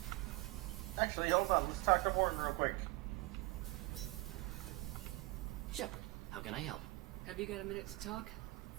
Actually, hold on. Let's talk to Morton real quick. Shepard, how can I help? Have you got a minute to talk?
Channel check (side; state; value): left; quieter; 22.3 dB